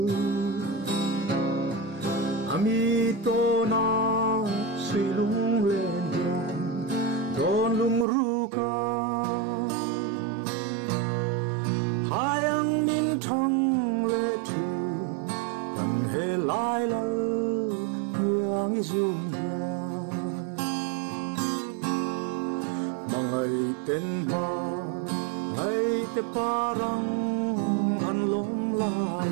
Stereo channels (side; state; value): left; drops out; at 8.1 s